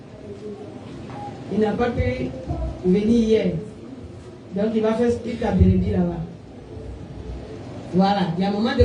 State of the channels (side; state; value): both; identical; correlation 1.00